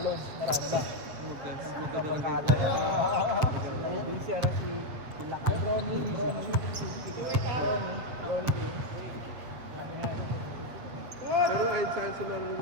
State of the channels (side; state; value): left; late; 7.9 ms